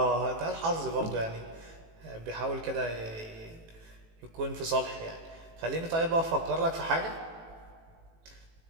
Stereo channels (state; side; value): late; left; 18 ms